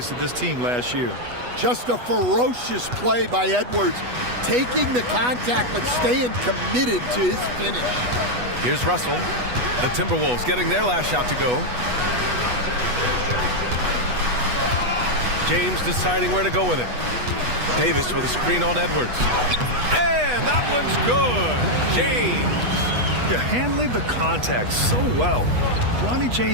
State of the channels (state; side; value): late; left; 8.2 ms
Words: to this team last year. Just a ferocious play by Edwards, taking the contact but staying committed to his finish. Here's Russell. The Timberwolves getting their last shot to go. James deciding where to go with it. Davis with a screen on Edwards. And that one's good. James. They're handling the contact so well. Bronny